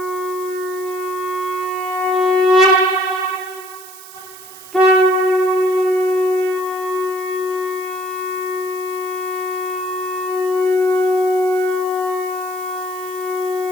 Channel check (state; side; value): noise; right; hiss, 17 dB below the sound